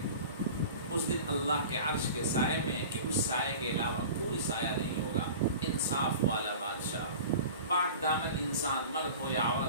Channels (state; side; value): inverted; both; correlation -0.38